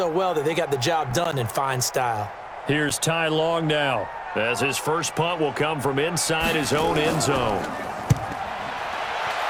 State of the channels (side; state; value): both; identical; correlation 1.00